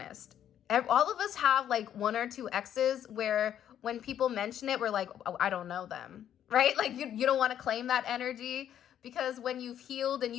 All of us have like one or two exes where when people mention it, we're like, oh, I don't know them. Right? Like you don't want to claim that energy because when you've healed and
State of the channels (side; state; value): right; quieter; 10.3 dB